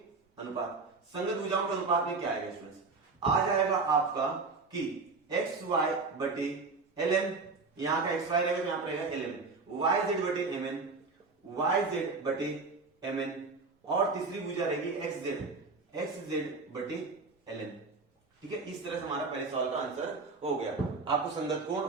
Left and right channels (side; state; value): left; quieter; 4.1 dB